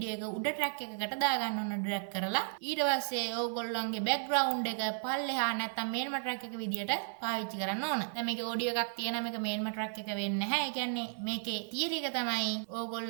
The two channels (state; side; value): silent; left; digital silence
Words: එක උඩ track එකකට දාගන්න ඕන drag කරලා. ඊට පස්සේ ඕගොල්ලන්ගේ background එක පල්ලෙහා නැත්නම් main track එක විදිහට පාවිච්චි කරන්න ඕන. දැන් මේකේ ඔඩියෝ එකක් තියෙනවා මේක මේන්ම ට්‍රැක් එක වෙන්නේ නැහැ. ඒ කියන්නේ මේකේ තියරි එක තමයි